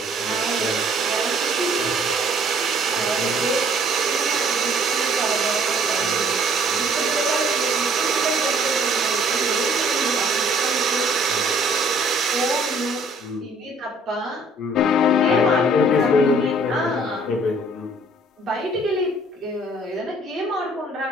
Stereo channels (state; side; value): normal; both; correlation 0.58